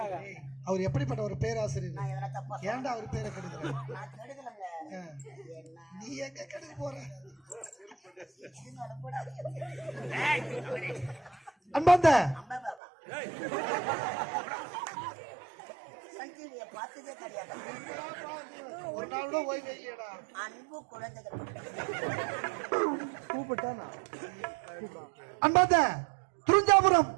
அவர் எப்படிப்பட்ட ஒரு பேராசிரியர்? ஏன்டா அவர் பேரை கெடுக்கிற? நீ எங்க கெடுக்க போற? அன்பாந்த பார்த்ததே கிடையாது. ஒரு நாள் கூட ஓய்வு இல்லையடா. அன்பு குழந்தைகள் கூப்பிட்டானா? அன்பாந்த துரிஞ்சாபுரம்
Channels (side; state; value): left; drops out; at 12.8 s